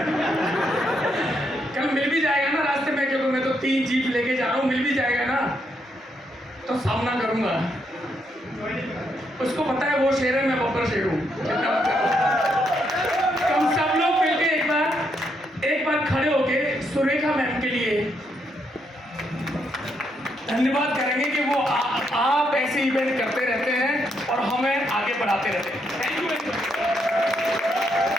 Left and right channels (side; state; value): both; normal; correlation 0.77